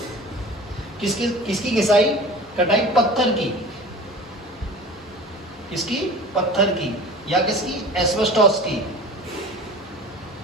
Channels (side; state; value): both; normal; correlation 0.39